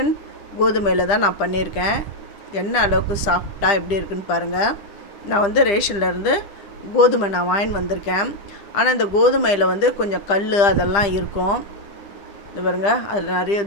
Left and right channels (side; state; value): right; late; 9.9 ms